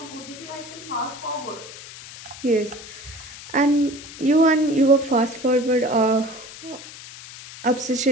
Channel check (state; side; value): noise; left; hiss, 15 dB below the sound